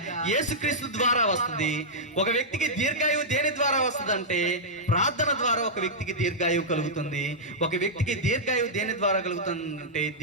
యేసుక్రీస్తు ద్వారా వస్తుంది. ఒక వ్యక్తికి దీర్ఘాయువు దేని ద్వారా వస్తుంది అంటే ప్రార్థన ద్వారా ఒక వ్యక్తికి దీర్ఘాయువు కలుగుతుంది. ఒక వ్యక్తికి దీర్ఘాయువు దేని ద్వారా కలుగుతుంది అంటే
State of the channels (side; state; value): both; normal; correlation -0.10